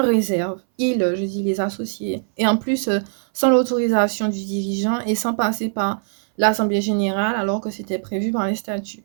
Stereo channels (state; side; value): silent; left; 60 dB below the other